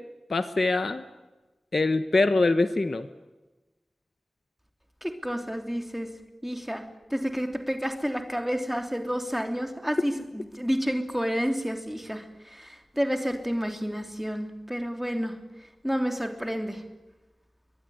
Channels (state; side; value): normal; both; correlation 0.97